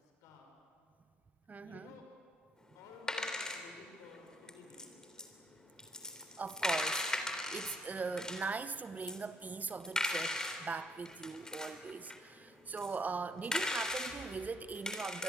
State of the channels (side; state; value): both; normal; correlation 0.69